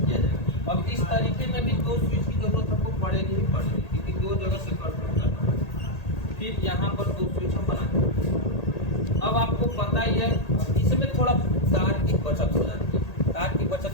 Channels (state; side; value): late; right; 1.8 ms